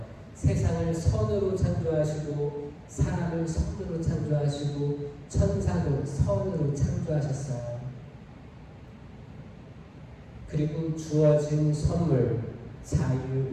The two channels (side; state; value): both; identical; correlation 1.00